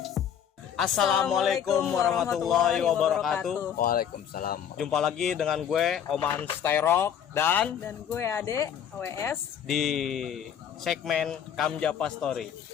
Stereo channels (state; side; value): quieter; right; 8.7 dB